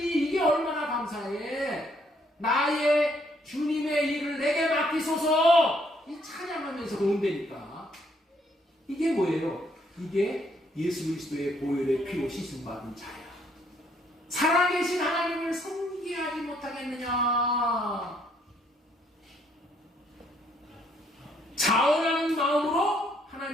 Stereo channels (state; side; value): normal; both; correlation 0.69